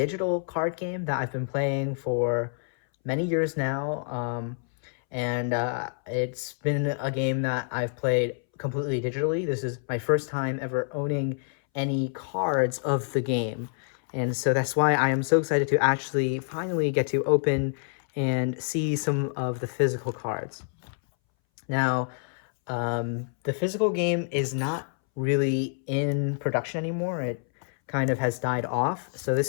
card game that I've been playing for many years now, and it's been a game that I've played completely digitally. This is my first time ever owning any cards of the game. And so that's why I am so excited to actually finally get to open and see some of the physical cards. Now, the physical game is not really in production anymore. It kind of has died off. So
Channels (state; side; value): silent; right; 60 dB below the other